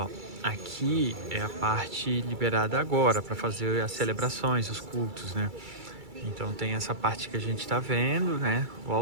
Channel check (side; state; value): left; late; 2.3 ms